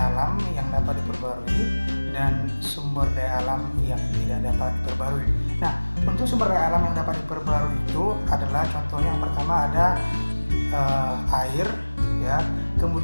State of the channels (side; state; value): both; inverted; correlation -1.00